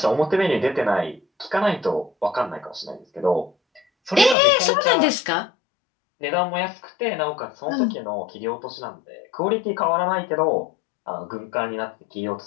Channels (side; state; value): right; drops out; at 4.4 s